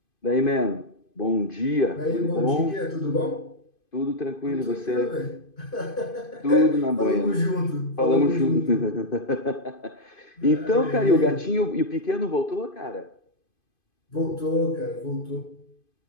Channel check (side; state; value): right; late; 2.5 ms